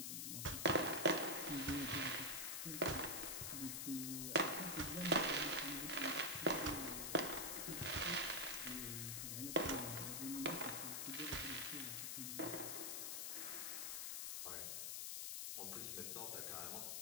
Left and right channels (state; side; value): noise; left; hiss, 2 dB below the sound